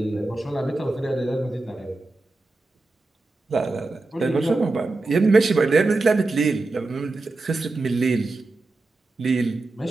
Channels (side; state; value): left; quieter; 3.2 dB